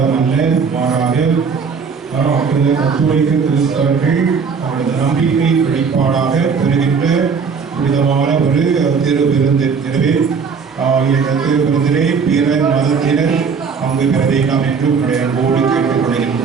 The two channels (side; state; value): left; quieter; 5.7 dB